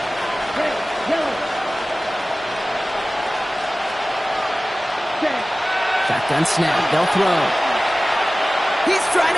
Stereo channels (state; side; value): normal; both; correlation 0.97